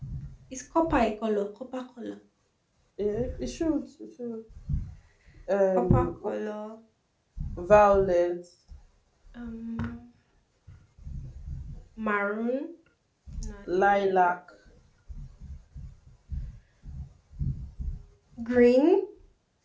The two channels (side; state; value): both; identical; correlation 1.00